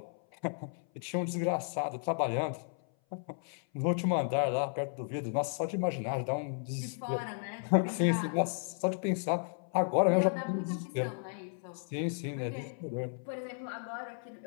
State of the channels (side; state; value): right; silent; 55 dB below the other